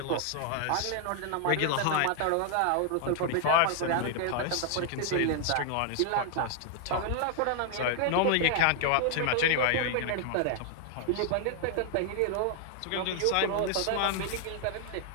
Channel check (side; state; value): both; different; correlation 0.00